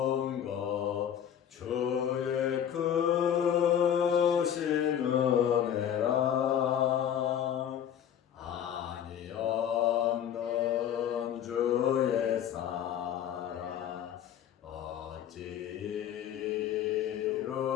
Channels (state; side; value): quieter; right; 9.5 dB